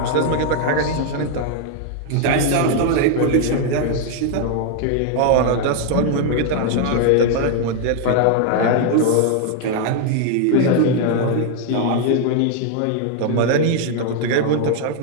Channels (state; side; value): different; both; correlation 0.00